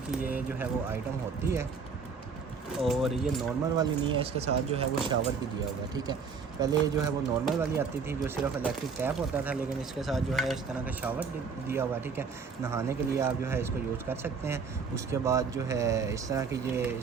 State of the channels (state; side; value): quieter; left; 5.5 dB